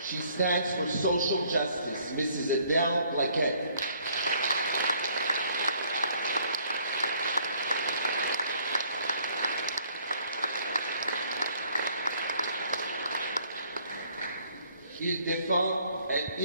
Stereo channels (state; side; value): inverted; both; correlation -0.62